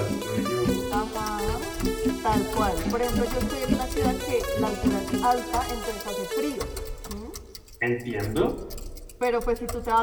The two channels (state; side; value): identical; both; correlation 1.00